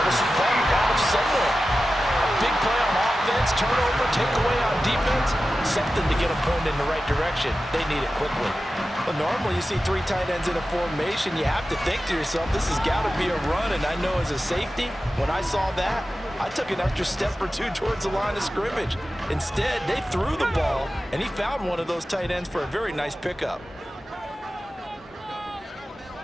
a spark out of somewhere. Big play on offense, turnover, takeaway on defense, something to get them pointed in the right direction. They need it quickly. Well, normally you see 3 tight ends in a formation, you have to think to yourself, this has got to be a run, and I know as a safety, when I saw that, I took an extra step or 2 towards the line of scrimmage. Instead, they threw the ball, and he found one of those tight ends for a very nice pickup.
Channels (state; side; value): normal; both; correlation 0.94